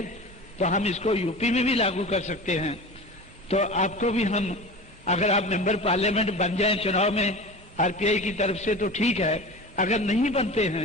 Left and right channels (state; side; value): normal; both; correlation 0.33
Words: तो हम इसको यूपी में भी लागू कर सकते हैं। तो आपको भी हम, अगर आप मेंबर पार्लियामेंट बन जाएं चुनाव में आरपीआई की तरफ से तो ठीक है, अगर नहीं बनते